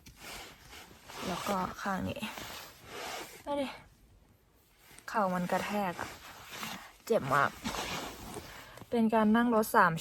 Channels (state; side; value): identical; both; correlation 1.00